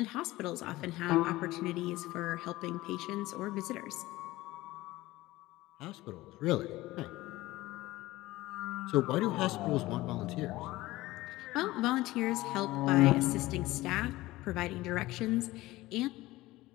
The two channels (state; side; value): quieter; right; 18.2 dB